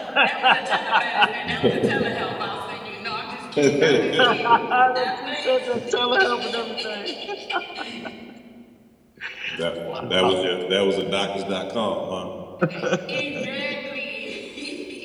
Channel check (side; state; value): both; identical; correlation 1.00